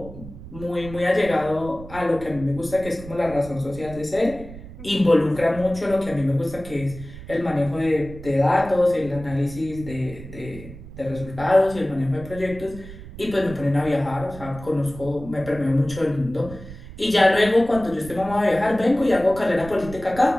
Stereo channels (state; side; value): noise; right; rumble, 15 dB below the sound